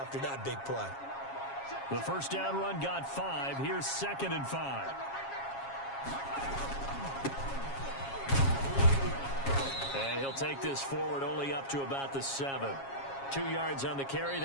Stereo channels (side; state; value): right; late; 7.3 ms